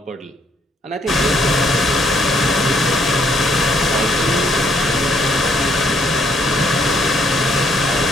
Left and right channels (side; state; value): both; normal; correlation 0.69